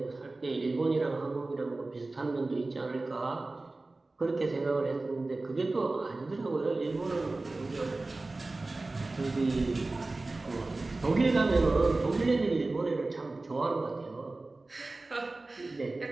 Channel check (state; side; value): quieter; left; 3.2 dB